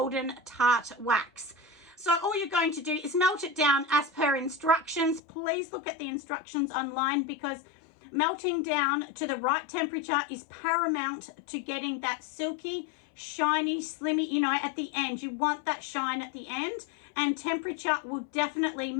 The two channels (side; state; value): right; drops out; at 5.2 s